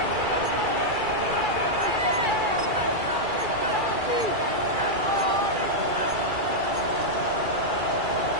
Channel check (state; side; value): late; left; 2.3 ms